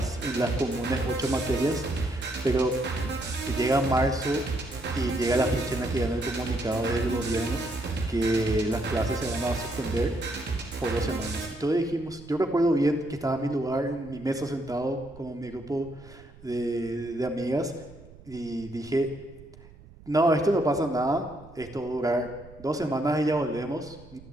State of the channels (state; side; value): noise; right; rumble, 21 dB below the sound